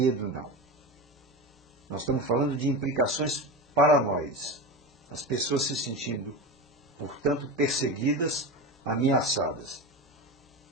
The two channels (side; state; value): both; normal; correlation 0.23